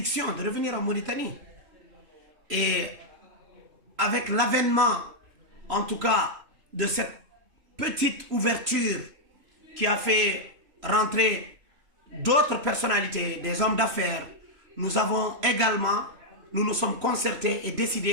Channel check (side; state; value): left; late; 3.0 ms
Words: de revenir en Mauritanie. Et avec l'avènement, en tout cas, de cette petite ouverture qui a fait rentrer d'autres personnalités, des hommes d'affaires, nous avons également, nous nous sommes concertés et